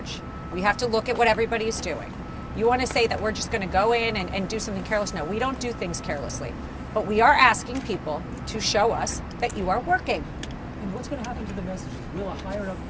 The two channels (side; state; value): both; identical; correlation 1.00